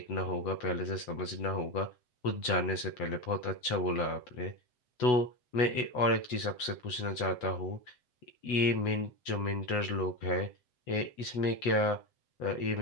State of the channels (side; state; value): right; late; 8.1 ms